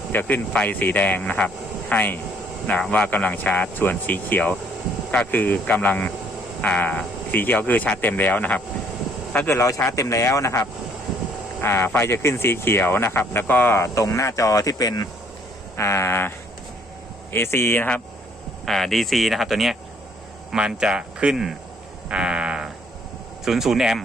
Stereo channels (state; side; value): normal; both; correlation 0.63